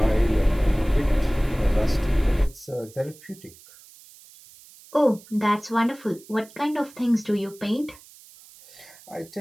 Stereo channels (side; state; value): right; noise; hiss, 23 dB below the sound